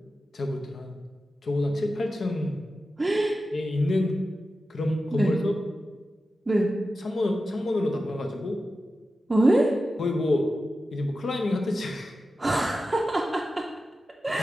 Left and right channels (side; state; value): both; normal; correlation 0.92